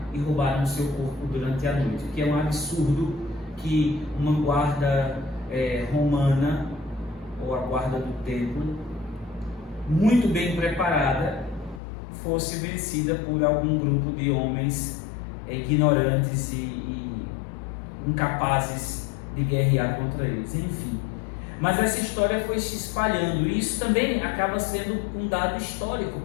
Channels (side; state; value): right; drops out; at 11.8 s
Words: e roubaram seu corpo durante a noite. Que é um absurdo que uma guarda romana, ou a guarda do templo, muito bem preparada, fosse vencida por algum grupo de homens ignorantes e incapazes de guerrear contra eles. Enfim, mas essa história foi se espalhando, e isso também acaba sendo um dado histórico